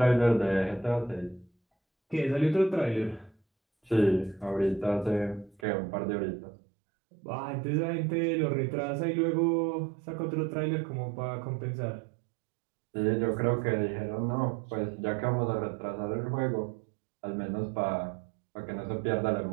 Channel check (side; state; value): left; drops out; at 5.6 s